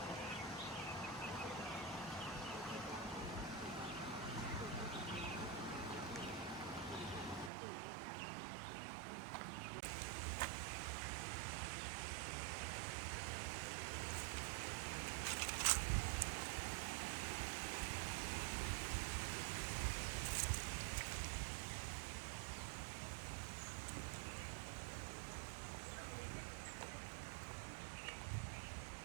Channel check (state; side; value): drops out; left; at 7.5 s